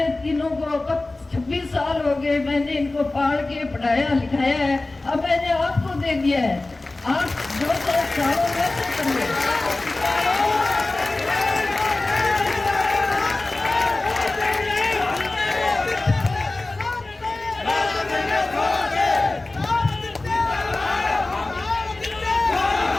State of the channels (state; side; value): quieter; right; 3.1 dB